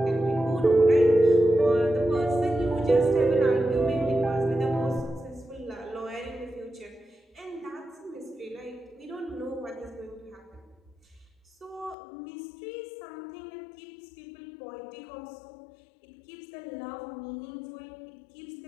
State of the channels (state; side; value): drops out; right; at 12.0 s